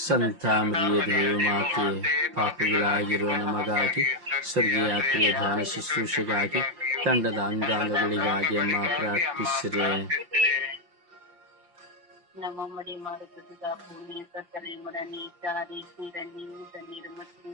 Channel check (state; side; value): late; left; 5.8 ms